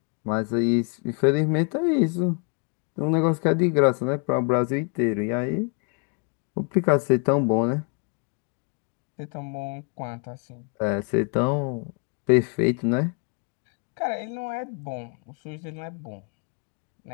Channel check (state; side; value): quieter; right; 37.7 dB